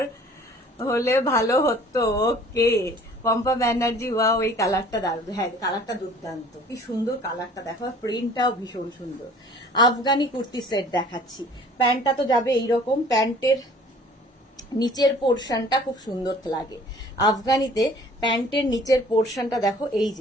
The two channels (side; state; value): both; normal; correlation 0.51